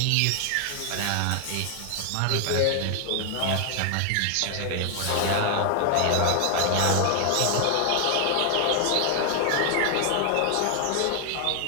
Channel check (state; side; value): different; both; correlation 0.00